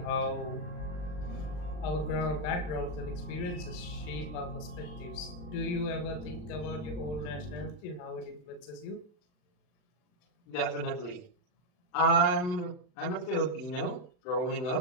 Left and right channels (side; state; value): right; late; 40 ms